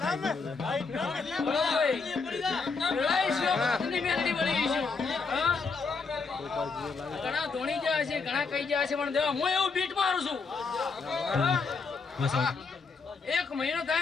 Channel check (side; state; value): right; quieter; 4.7 dB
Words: વેળાએ શિવા ભગતની મેલડી વળી ગઈ છે. ઘણા ધોણી ગયા છે, ઘણા કઈ ગયા છે, પણ દેવા હું એવું બીટ મારું છું. 1 મહિનો